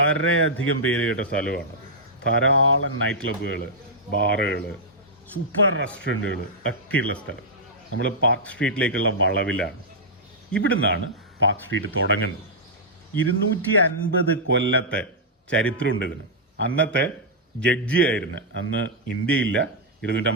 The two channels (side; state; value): both; normal; correlation -0.08